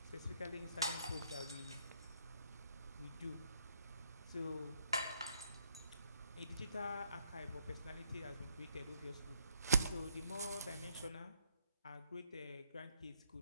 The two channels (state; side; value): inverted; both; correlation -0.70